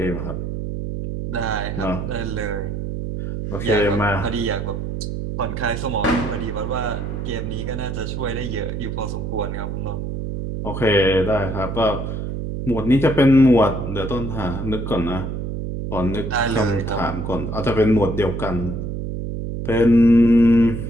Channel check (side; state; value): right; noise; hum, 4 dB below the sound